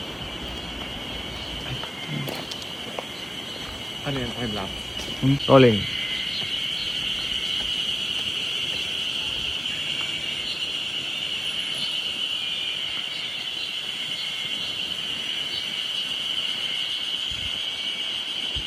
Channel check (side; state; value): both; normal; correlation 0.96